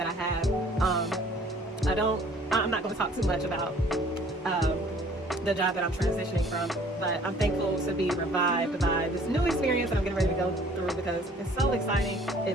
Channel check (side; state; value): both; normal; correlation 0.55